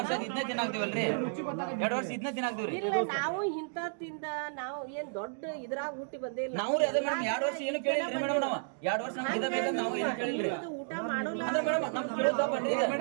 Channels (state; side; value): silent; left; digital silence